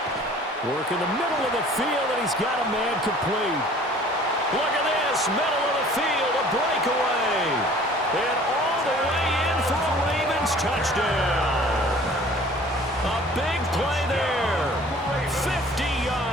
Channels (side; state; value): both; normal; correlation 0.50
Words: Work in the middle of the field, and he's got a man complete. Look at this, middle of the field, a breakaway. And all the way in for a Ravens touchdown. A big play there. 50